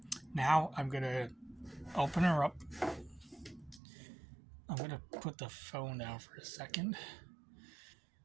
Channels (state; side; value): drops out; left; at 3.8 s